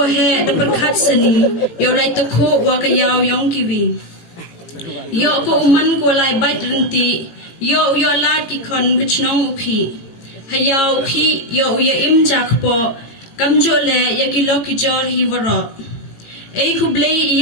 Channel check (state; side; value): late; right; 18 ms